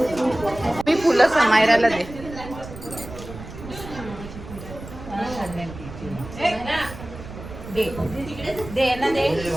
मी फुलं समायराला दे. दे ना दे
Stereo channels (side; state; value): right; noise; rumble, 13 dB below the sound